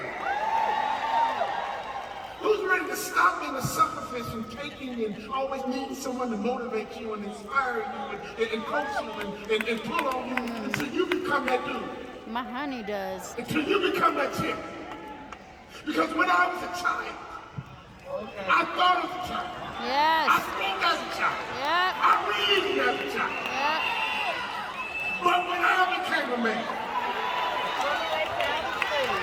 Who's ready to stop being a sucker and taking and always needing someone to motivate you and inspire you and coach you and pull on you until you become that dude? My honey does. Until you become that chick. Because when I was a child, I thought as a child. Yes. I spoke as a child. Yep. I reasoned as a child. Yep. But when I became a man,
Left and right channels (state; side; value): identical; both; correlation 1.00